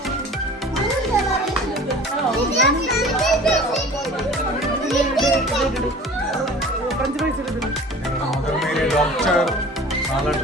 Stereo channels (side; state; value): both; normal; correlation 0.43